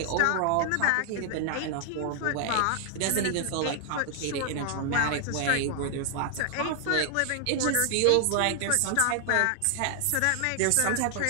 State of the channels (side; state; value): both; different; correlation 0.00